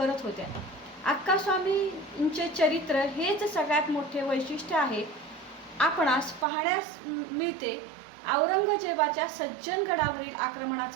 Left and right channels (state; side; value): drops out; left; at 6.5 s